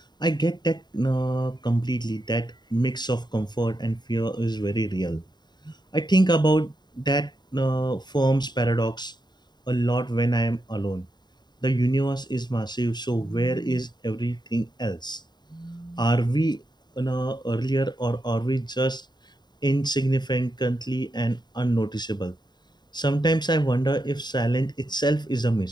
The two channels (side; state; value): right; late; 0.21 ms